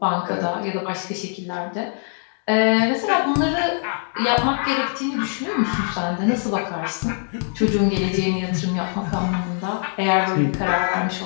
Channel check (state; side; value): silent; right; 59 dB below the other